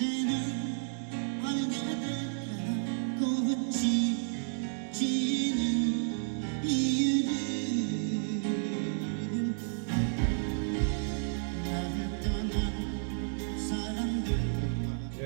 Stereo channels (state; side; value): silent; left; digital silence